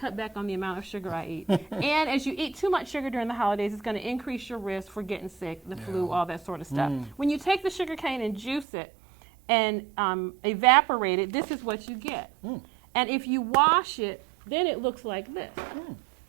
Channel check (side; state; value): left; drops out; at 8.7 s